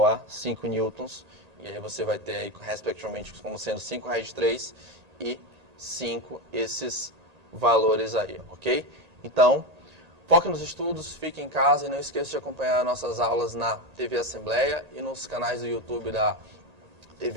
a 5 newtons. E aí você vai ter, aí, respectivamente, como sendo 5 raiz de 3 e 5 esses valores aí, ok? Então, foque nos estudos, fique em casa e não esqueça de acompanhar nossas aulas na TV Assembleia e nos canais do YouTube da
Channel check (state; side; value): late; left; 1.8 ms